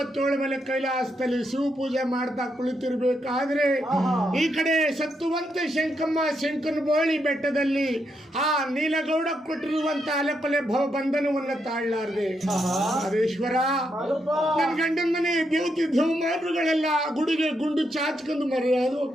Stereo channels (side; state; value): both; normal; correlation 0.80